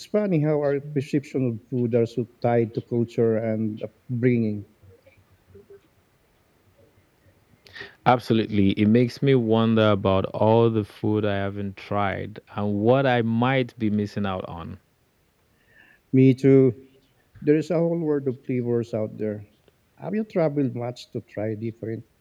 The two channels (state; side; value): identical; both; correlation 1.00